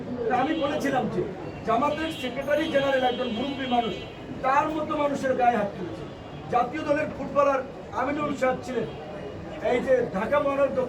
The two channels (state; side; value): identical; both; correlation 1.00